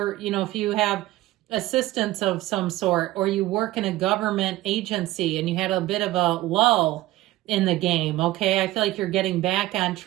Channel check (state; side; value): quieter; left; 17.0 dB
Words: you have assistance of some sort, or you work in a government agency and you had a bit of a lull in the game, okay? I feel like you're getting back on